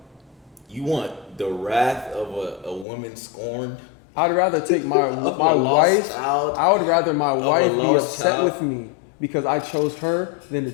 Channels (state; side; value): drops out; right; at 2.9 s